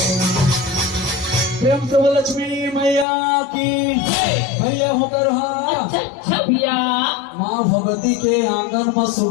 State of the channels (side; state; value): right; drops out; at 3.1 s